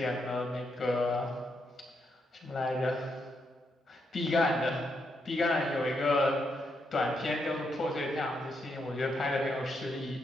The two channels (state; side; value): normal; both; correlation 0.80